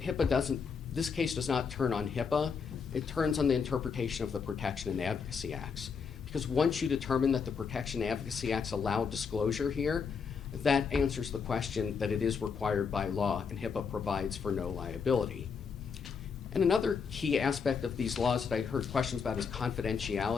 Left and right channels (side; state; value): right; quieter; 5.9 dB